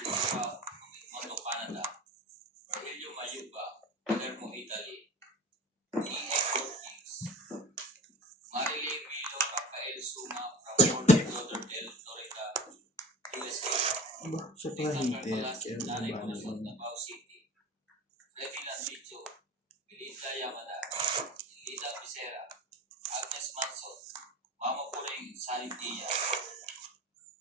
Monto, Canada. Marilio Mayuba, Palermo, Italy. E.A. Kings. Marilyn Milo Rafael Suma from Fort Lauderdale, Florida, USA. Siya Tingnan hintay. Carpalas, Nanay Bunasot, Davao City. Freddy Landicho, Belinda Yamada, Lita Becerra, Agnes Manson, Mama Puring Sanitia,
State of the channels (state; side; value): normal; both; correlation 0.35